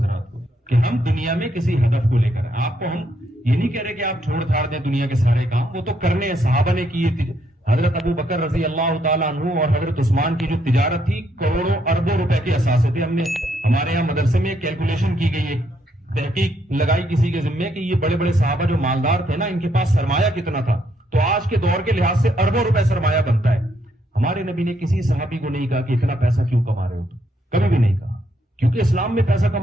کو, کہ ہم دنیا میں کسی ہدف کو لے کر, آپ کو ہم یہ نہیں کہہ رہے کہ آپ چھوڑ چھاڑ دیں دنیا کے سارے کام, وہ تو کرنے ہیں, صحابہ نے کیے. حضرت ابو بکر رضی اللہ تعالیٰ عنہ اور حضرت عثمان کی جو تجارت تھی کروڑوں اربوں روپے کے اثاثے تھے. ہم نے ہمارے یہاں مدرسے میں کیلکولیشن کی گئی ہے, تحقیق لگائی کسی کے ذمے کہ یہ بڑے بڑے صحابہ جو مالدار تھے نا, ان کے پاس سرمایہ کتنا تھا. تو آج کے دور کے لحاظ سے اربوں روپے سرمایہ بنتا ہے. ہمارے نبی نے کسی صحابی کو نہیں کہا کہ اتنا پیسہ کیوں کما رہے ہو, کبھی بھی نہیں کہا, کیونکہ اسلام میں پیسہ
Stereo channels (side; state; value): both; normal; correlation 0.74